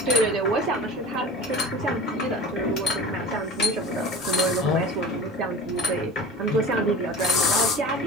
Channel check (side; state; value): both; normal; correlation 0.36